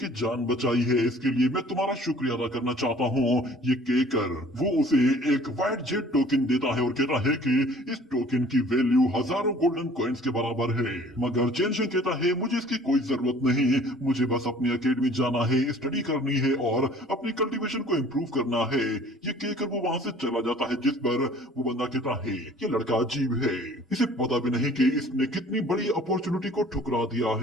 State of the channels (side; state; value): both; normal; correlation 0.52